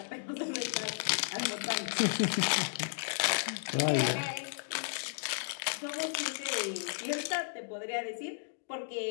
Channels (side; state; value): right; silent; digital silence